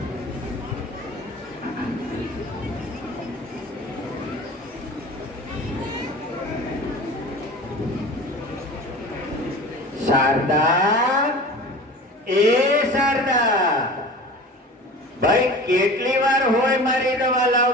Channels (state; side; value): normal; both; correlation 0.37